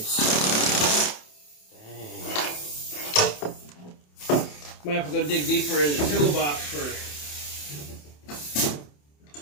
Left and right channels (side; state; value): right; late; 27 ms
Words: Dang. Might have to go dig deeper in the toolbox for